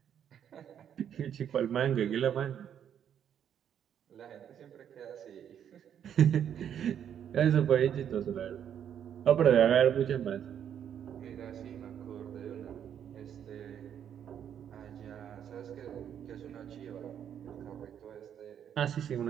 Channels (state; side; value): quieter; left; 9.1 dB